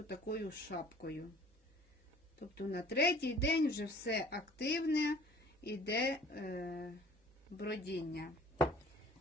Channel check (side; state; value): both; normal; correlation 0.51